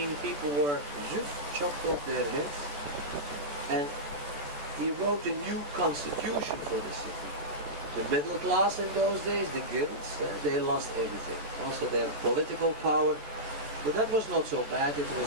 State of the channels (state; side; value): late; left; 14 ms